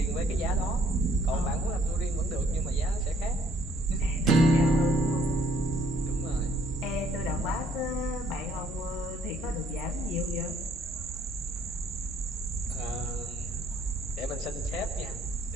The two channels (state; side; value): normal; both; correlation 0.63